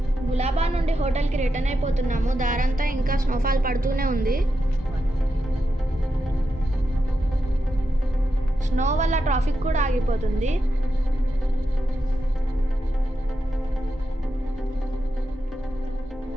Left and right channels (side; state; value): both; normal; correlation 0.87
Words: గులాబా నుండి హోటల్కి రిటర్న్ అయిపోతున్నాము. దారంతా ఇంకా స్నోఫాల్ పడుతూనే ఉంది. స్నో వల్ల ట్రాఫిక్ కూడా ఆగిపోతుంది.